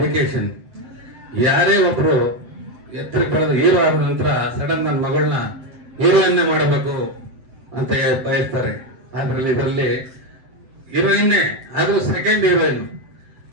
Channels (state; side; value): late; left; 7.8 ms